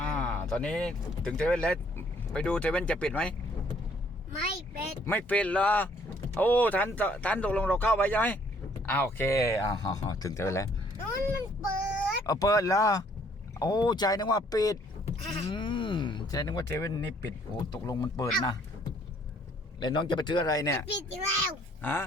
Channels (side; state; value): both; normal; correlation 0.63